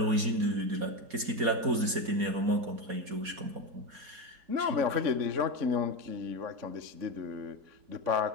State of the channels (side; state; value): left; late; 4.2 ms